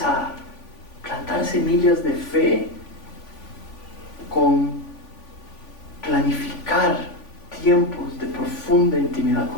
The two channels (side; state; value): right; late; 3.5 ms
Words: a plantar semillas de fe, con planificar tiempos de profunda intimidad